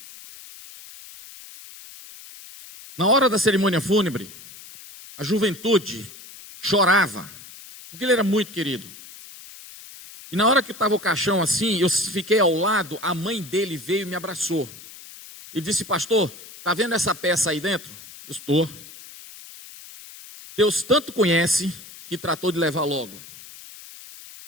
Na hora da cerimônia fúnebre, a juventude chorava, porque ele era muito querido. E na hora que estava o caixão assim, eu fiquei ao lado, a mãe dele veio e me abraçou. E disse, pastor, está vendo essa peça aí dentro? Eu estou. Deus tanto conhece que tratou de levar logo,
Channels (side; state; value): left; noise; hiss, 17 dB below the sound